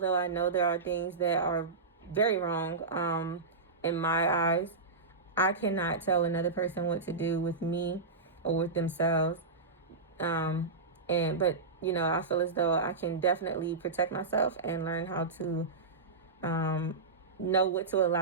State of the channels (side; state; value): left; quieter; 4.0 dB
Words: I know there are things that are very wrong in my eyes. I cannot tell another person what to do with me or with themselves. But I feel as though I can definitely protect myself and learn how to know what to